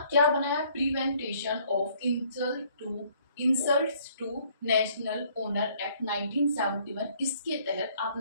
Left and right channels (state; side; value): inverted; both; correlation -0.62